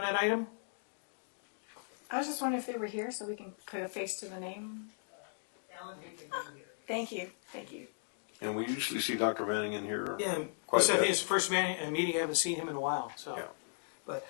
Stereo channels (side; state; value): right; silent; digital silence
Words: that item? I was just wondering if they were here so we can put a face to the name. Thank you. Thank you. And we usually see Dr. Manning in here Yeah, quite this a I think bit. is the first meeting. I haven't seen him in a while. So, Yeah. but